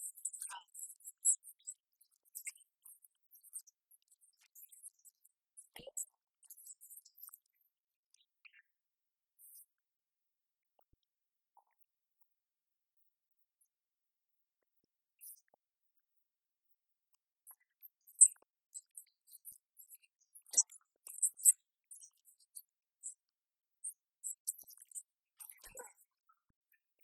juvenile great whites swim near people 97% of the time off of Carpinteria Beach with no attacks. We saw a shark here in the water, and I'm watching people, and nobody seems to be the least concerned that there are sharks 250 feet away from them. Tucked between Santa Barbara and LA, Carpinteria is billed as the safest beach in the world, free of riptides, not sharks.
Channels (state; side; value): identical; both; correlation 1.00